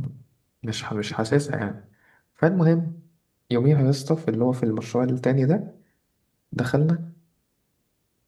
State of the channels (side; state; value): both; identical; correlation 1.00